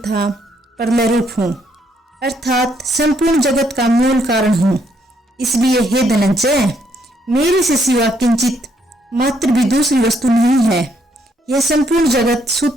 प्रलय रूप हूँ, अर्थात संपूर्ण जगत का मूल कारण हूँ। इसलिए हे धनंजय, मेरे से सिवा किंचित मात्र भी दूसरी वस्तु नहीं है। यह संपूर्ण जगत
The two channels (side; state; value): both; normal; correlation 0.72